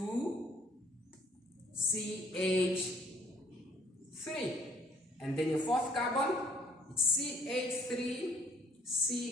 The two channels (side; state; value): both; normal; correlation 0.61